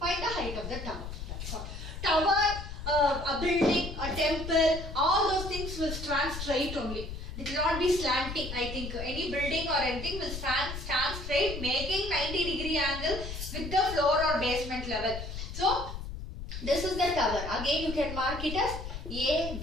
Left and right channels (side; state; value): left; noise; rumble, 8 dB below the sound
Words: the height of the tower. That's all. Tower, a building, a temple, all those things will stand straight only. It will not be slanting. I think any building or anything will stand straight, making 90 degree angle with the floor or basement level. So this is the tower. Again you can mark it as A,